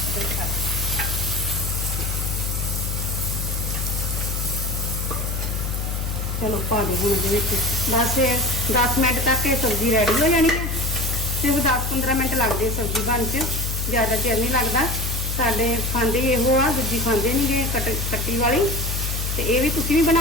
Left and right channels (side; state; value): left; noise; hum, 2 dB below the sound